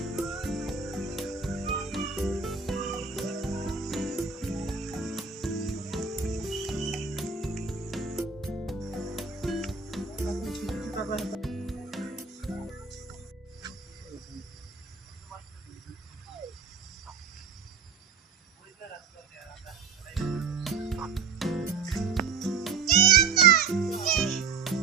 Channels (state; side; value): quieter; left; 5.5 dB